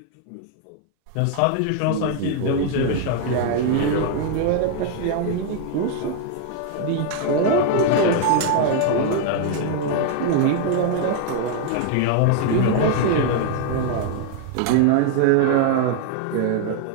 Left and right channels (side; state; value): both; different; correlation 0.00